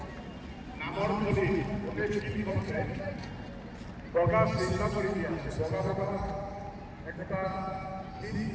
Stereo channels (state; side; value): identical; both; correlation 1.00